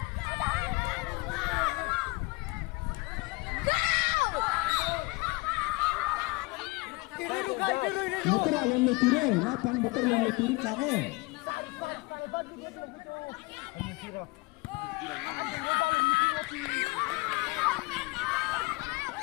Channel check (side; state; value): right; quieter; 24.8 dB